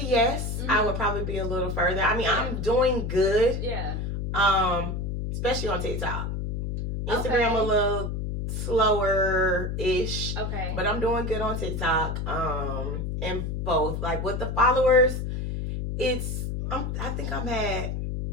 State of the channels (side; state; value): left; noise; hum, 3 dB below the sound